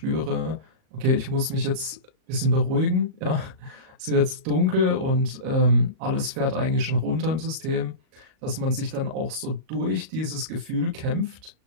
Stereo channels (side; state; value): left; late; 38 ms